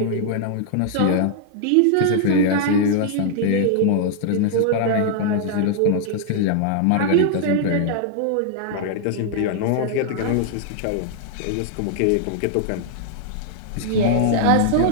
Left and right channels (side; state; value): both; different; correlation 0.00